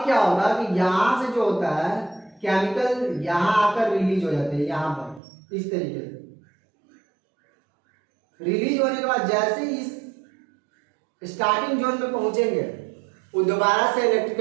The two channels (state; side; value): drops out; left; at 5.2 s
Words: क्या होगा कि यहां से जो होता है केमिकल यहां आकर रिलीज हो जाते हैं, यहां पर इस तरीके से रिलीज होने के बाद जैसे इस स्टार्टिंग जोन में पहुंचेंगे वो दोबारा से